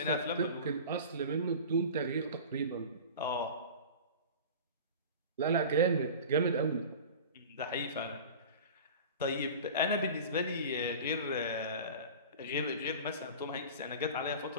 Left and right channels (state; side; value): inverted; both; correlation -0.36